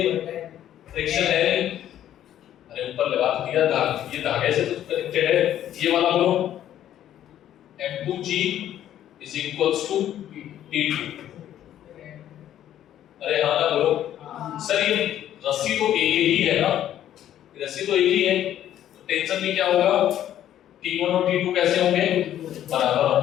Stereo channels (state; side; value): quieter; right; 11.5 dB